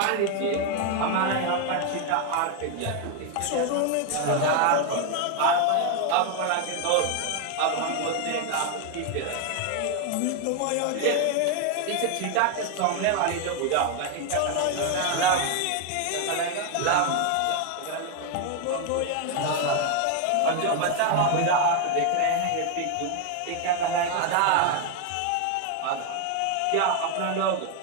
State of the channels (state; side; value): different; both; correlation 0.01